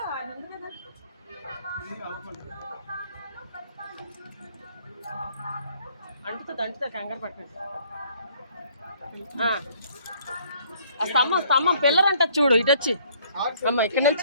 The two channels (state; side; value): inverted; both; correlation -0.61